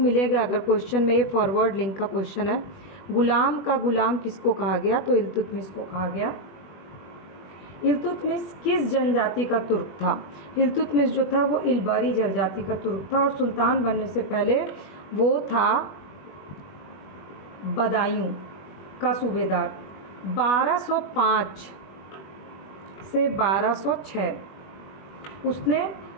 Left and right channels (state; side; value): late; right; 20 ms